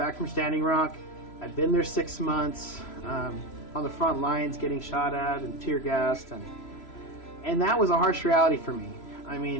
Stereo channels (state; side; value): late; right; 3.0 ms